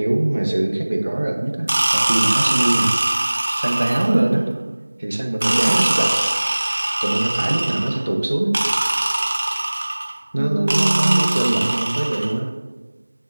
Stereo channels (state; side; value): inverted; both; correlation -1.00